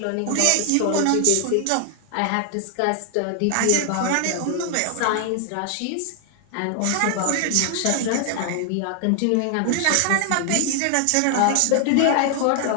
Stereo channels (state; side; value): different; both; correlation 0.00